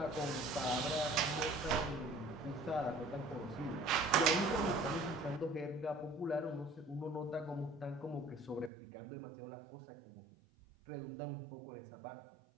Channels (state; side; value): drops out; left; at 8.7 s